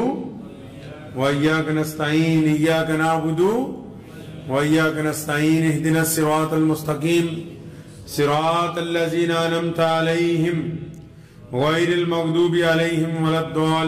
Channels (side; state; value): both; identical; correlation 1.00